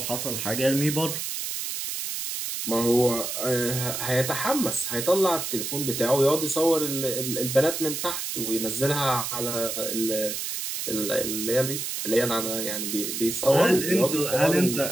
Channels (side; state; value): right; noise; hiss, 4 dB below the sound